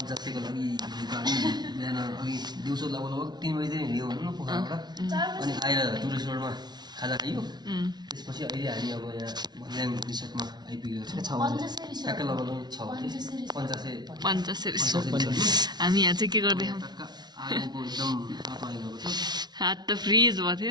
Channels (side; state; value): left; late; 0.20 ms